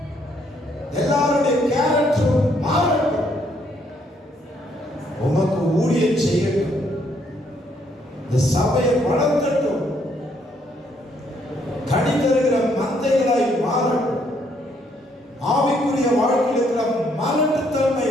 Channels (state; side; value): normal; both; correlation 0.70